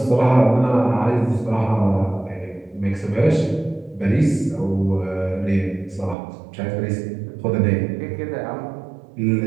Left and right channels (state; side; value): drops out; left; at 6.2 s